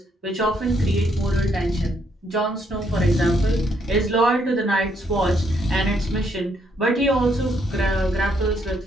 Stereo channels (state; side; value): normal; both; correlation 0.72